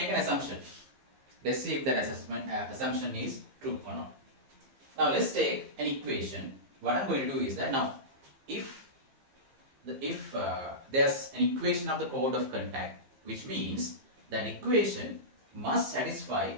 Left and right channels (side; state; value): left; late; 15 ms